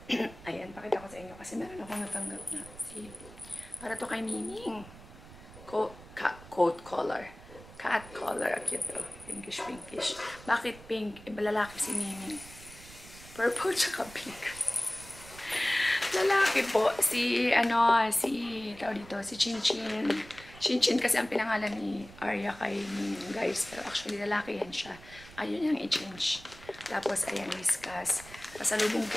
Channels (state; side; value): noise; right; rumble, 18 dB below the sound